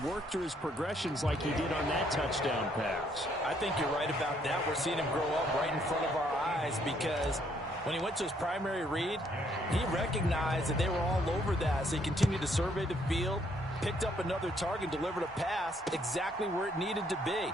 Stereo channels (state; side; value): normal; both; correlation 0.69